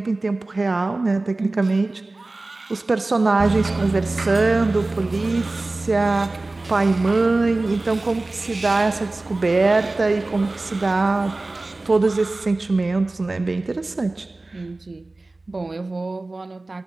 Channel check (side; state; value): left; quieter; 3.1 dB